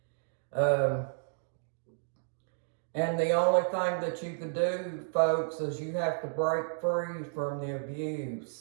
And the only thing that you can do, folks, is you have to break free from the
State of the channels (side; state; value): left; silent; digital silence